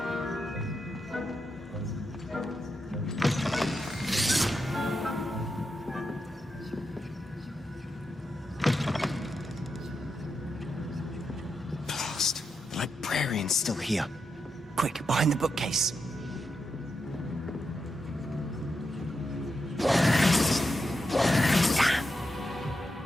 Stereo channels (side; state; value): both; normal; correlation 0.86